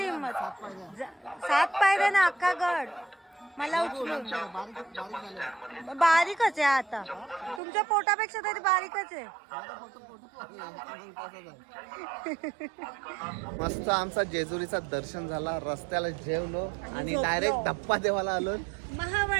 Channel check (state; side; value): drops out; left; at 7.6 s